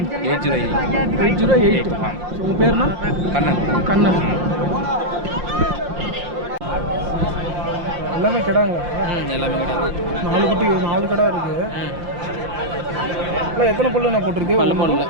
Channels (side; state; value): left; late; 5.7 ms